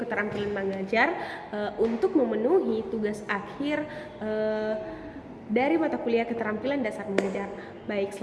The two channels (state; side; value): identical; both; correlation 1.00